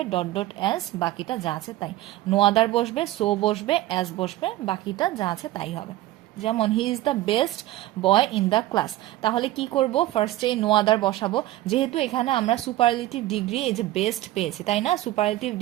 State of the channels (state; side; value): quieter; left; 15.7 dB